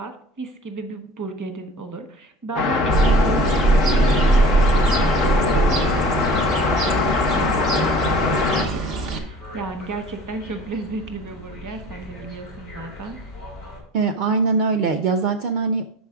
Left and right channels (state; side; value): normal; both; correlation 0.44